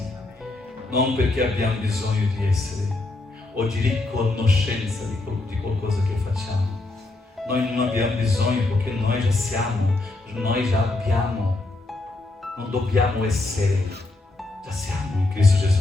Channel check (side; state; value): right; quieter; 3.0 dB